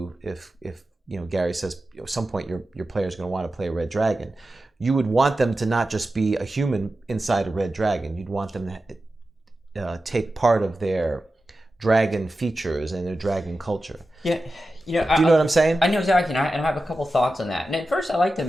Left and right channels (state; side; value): normal; both; correlation 0.93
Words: if Gary says at some point your player is going to want to play a red dragon, you would want them to not just be a human inside a red dragon. You'd want them to take part of their dragon features and their dragon culture. Yeah. Do you know what I'm saying? I know exactly, and I have a couple thoughts on that. And at first, I like to